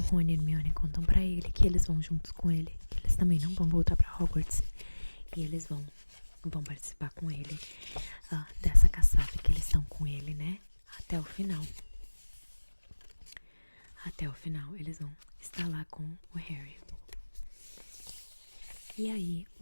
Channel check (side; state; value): both; inverted; correlation -1.00